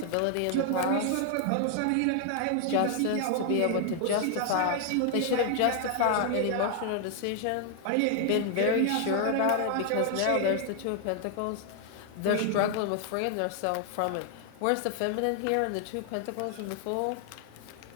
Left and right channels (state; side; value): different; both; correlation 0.00